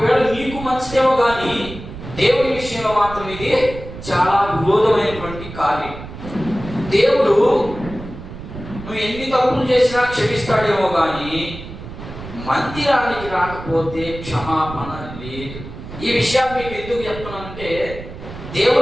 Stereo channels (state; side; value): noise; right; rumble, 12 dB below the sound